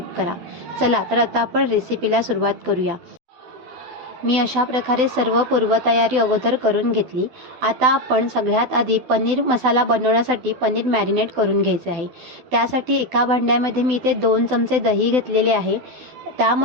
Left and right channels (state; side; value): late; left; 12 ms